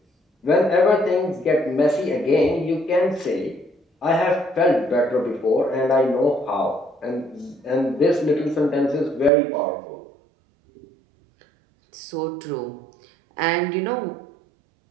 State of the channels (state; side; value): drops out; left; at 9.3 s